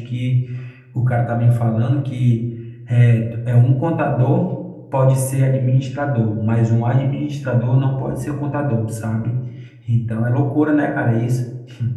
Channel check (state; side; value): identical; both; correlation 1.00